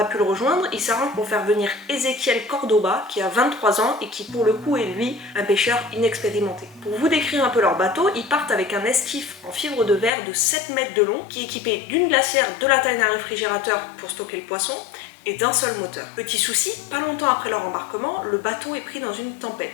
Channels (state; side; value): drops out; right; at 10.1 s